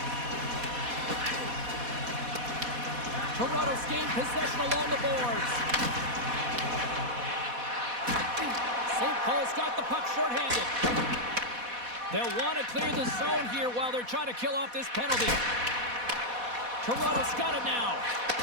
Toronto's gained possession along the boards. St. Paul's got the puck shorthanded. They'll want to clear the zone here while they're trying to kill off this penalty. Toronto's got it now.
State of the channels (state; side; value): late; left; 4.1 ms